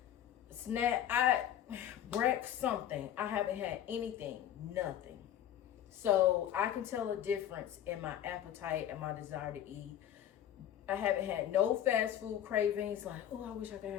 something. I haven't had anything, nothing. So I can tell a difference in my appetite and my desire to eat. I haven't had no fast food cravings, like, oh, I wish I could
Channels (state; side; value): quieter; right; 10.9 dB